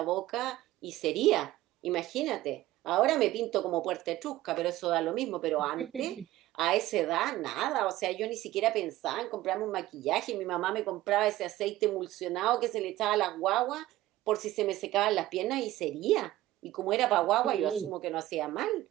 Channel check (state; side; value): quieter; left; 15.9 dB